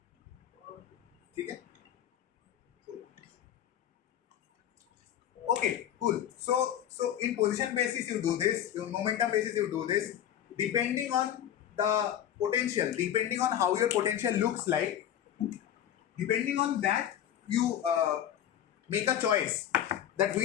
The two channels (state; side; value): quieter; right; 10.6 dB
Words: Okay? Okay, cool. So in position basis you do this, in momentum basis you do this. Depending on the potential, depending on how your potential looks like, depending on that you make a choice that